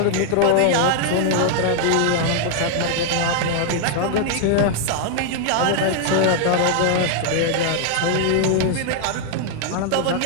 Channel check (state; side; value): different; both; correlation 0.00